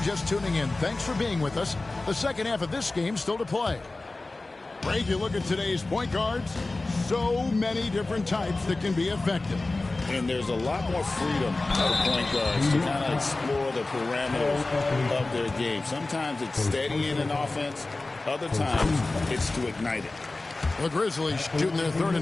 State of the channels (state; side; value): quieter; right; 3.2 dB